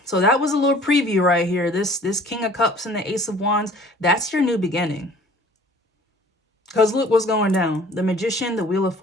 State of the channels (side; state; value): both; normal; correlation 0.50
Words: So that was a little preview right here. This King of Cups and the Ace of Wands, that's your new beginning. Because look what's going down. The Magician, the Wheel of